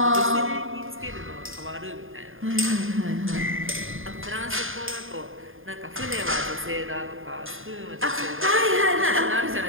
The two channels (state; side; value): late; left; 0.59 ms